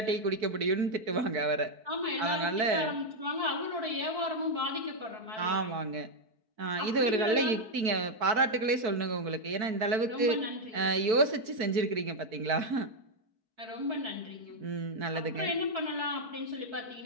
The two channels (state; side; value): late; left; 4.6 ms